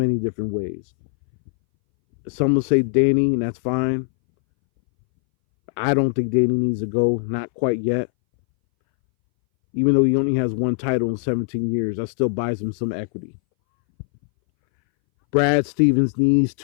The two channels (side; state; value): right; silent; 62 dB below the other